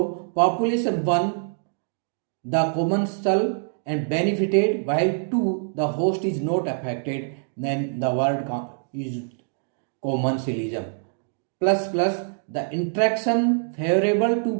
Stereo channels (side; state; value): left; silent; digital silence